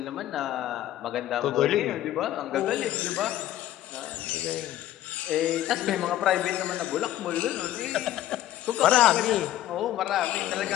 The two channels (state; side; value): quieter; right; 13.2 dB